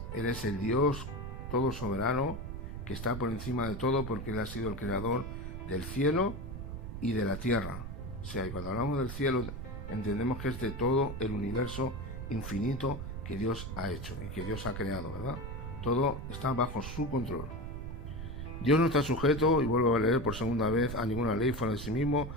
Él es el Dios todo soberano que está por encima de todo, porque Él ha sido el creador del cielo y de la tierra. O sea, y cuando hablamos del cielo entendemos que es de todo el universo infinito que Dios ha hecho y que Dios ha creado, ¿verdad? Todo está bajo su control. Dios no está sujeto, y vuelvo a leer por segunda vez, a ninguna ley fuera de sí mismo.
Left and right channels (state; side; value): noise; right; rumble, 7 dB below the sound